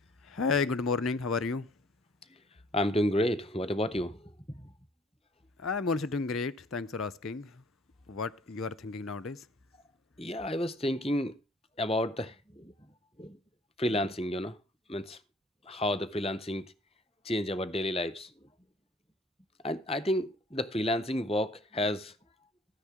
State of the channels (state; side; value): normal; both; correlation 0.57